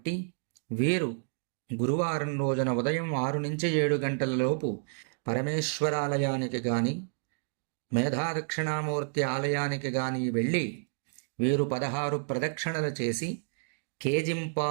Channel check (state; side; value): silent; left; digital silence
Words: వీరు గురువారం రోజున ఉదయం 6 నుంచి 7 గంటల లోపు పరమేశ్వరాలయానికి కానీ మేధాదక్షిణామూర్తి ఆలయానికి కానీ వెళ్ళి వీరు 16 ప్రదక్షిణలు చేసి